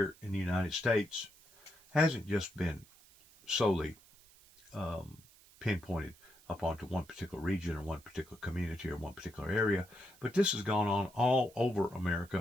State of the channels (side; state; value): right; noise; hiss, 26 dB below the sound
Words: in the United States hasn't just been solely pinpointed upon to one particular region or one particular community or one particular area, but this has gone on all over